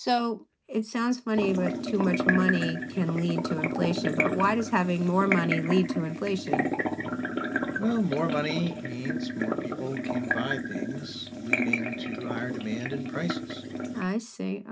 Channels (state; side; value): identical; both; correlation 1.00